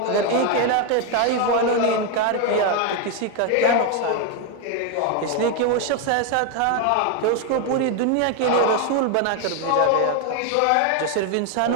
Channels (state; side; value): different; both; correlation 0.01